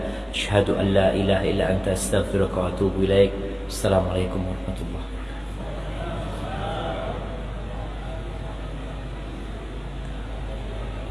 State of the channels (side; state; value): both; identical; correlation 1.00